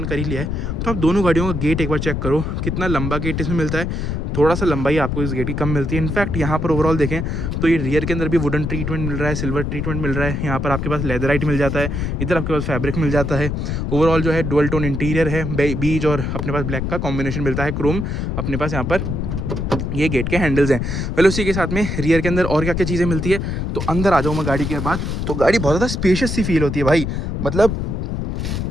कर ही लिया है तो आप दोनों गाड़ियों का गेट एक बार चेक करो, कितना लंबा गेट इसमें मिलता है। थोड़ा सा लंबाई आपको इस गेट की कम मिलती है। इनफैक्ट यहाँ पर ओवरऑल देखें तो ये रियर के अंदर भी वुडन ट्रीटमेंट मिल रहा है, सिल्वर ट्रीटमेंट मिल रहा है, यहाँ पर आपके पास लेदराइट मिल जाता है, इधर आपके पास फैब्रिक मिल जाता है। ओवरऑल जो है डुअल टोन इंटीरियर है, बीज और अपने पास ब्लैक का कॉम्बिनेशन मिलता है, क्रोम अपने पास यहाँ पर ये गेट के हैंडल्स हैं। पहले उसी के साथ में रियर के अंदर और क्या क्या चीज़ें मिलती है तो अंदर आ जाऊँ मैं गाड़ी के बाद, तो गाड़ी बहुत ज़्यादा स्पेशियस सी फील होती है भाई। मतलब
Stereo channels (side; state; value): left; noise; rumble, 2 dB below the sound